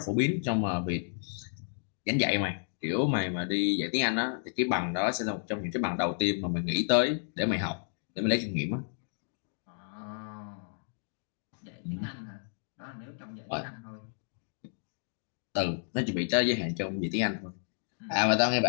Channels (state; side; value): silent; right; digital silence